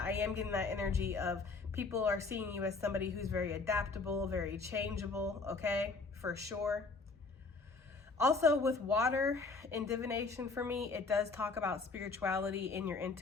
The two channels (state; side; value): quieter; right; 4.0 dB